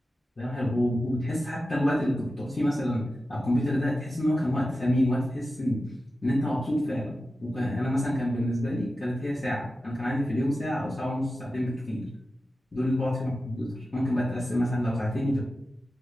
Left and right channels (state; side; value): normal; both; correlation 0.92